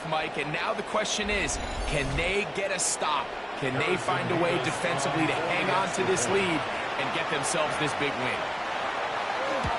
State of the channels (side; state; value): both; identical; correlation 1.00